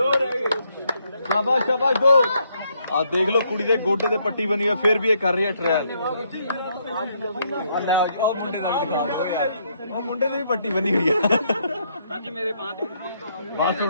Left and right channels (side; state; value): both; inverted; correlation -0.73